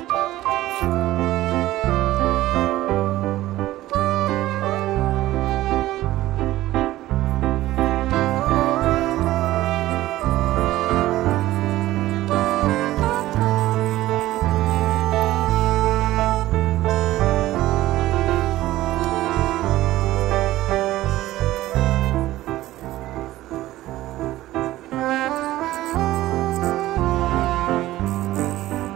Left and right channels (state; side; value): quieter; left; 15.8 dB